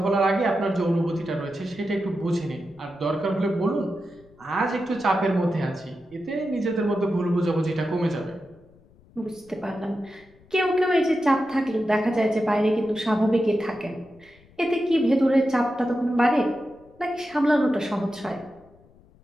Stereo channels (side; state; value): left; noise; rumble, 28 dB below the sound